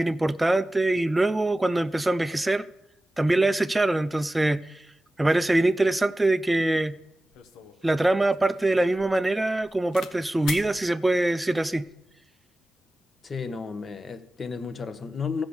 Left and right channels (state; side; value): normal; both; correlation 0.96